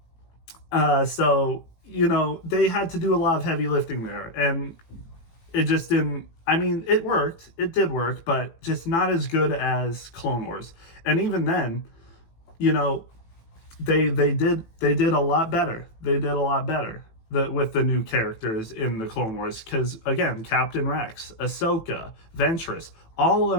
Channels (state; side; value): late; right; 18 ms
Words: So, you know, they had to do a lot of heavy lifting there. And it just didn't, I mean, it worked. It did work, but just not as good as Clone Wars. And even then, you know, they did a lot better. They did a lot better with the new characters in the Clone Wars. Because, again, Captain Rex, Ahsoka, Ventress, all